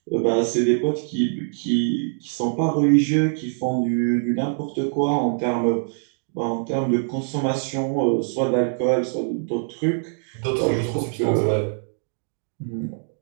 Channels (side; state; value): left; silent; digital silence